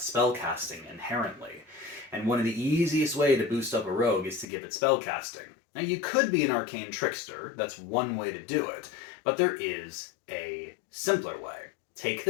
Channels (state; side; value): drops out; right; at 4.5 s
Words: inherently. And one of the easiest way to boost up a rogue is to give it spellcasting. Now you could be an arcane trickster, that's one way to do it, but there is a simpler way. Take